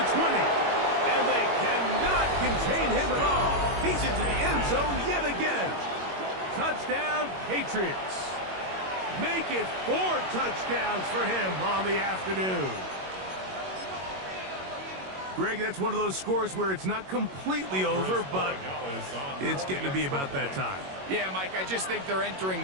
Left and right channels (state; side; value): late; left; 21 ms